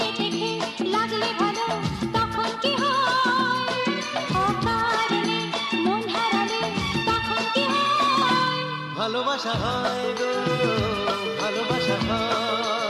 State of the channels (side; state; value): both; identical; correlation 1.00